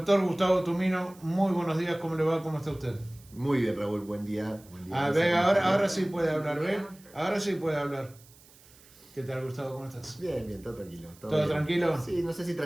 Gustavo Tumino, muy buenos días, ¿cómo le va? ¿Cómo está usted? Muy bien, Raúl, buen día. Buen día. A ver, ahora sí puede hablar, ¿ve? Ahora sí puede hablar. ¿Qué tal, Gustavo? ¿Cómo estás? Bien, bien, todo tranquilo. ¿Todo bien. tranquilo? Sí, no sé si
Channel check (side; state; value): right; noise; hiss, 25 dB below the sound